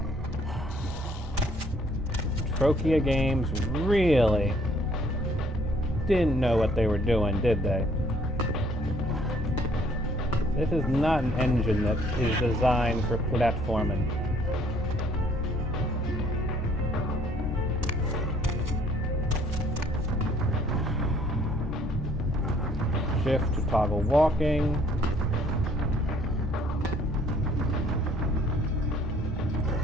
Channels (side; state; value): both; normal; correlation 0.62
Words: Trokia Games really didn't know what they were doing, did they? This is not an engine that is designed for platforming. Shift to toggle walking.